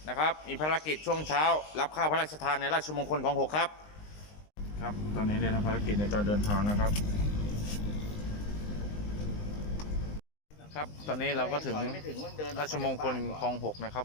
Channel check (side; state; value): right; late; 19 ms